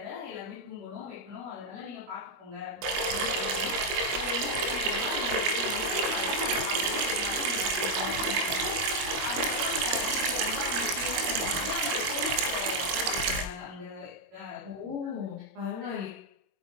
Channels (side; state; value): left; late; 22 ms